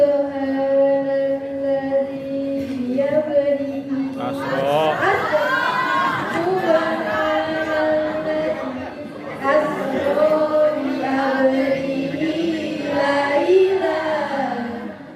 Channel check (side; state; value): both; identical; correlation 1.00